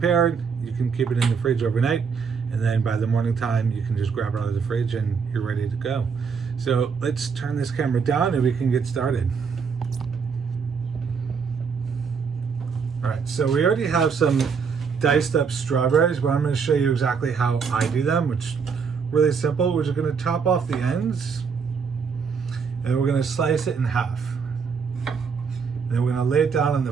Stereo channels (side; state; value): left; quieter; 5.9 dB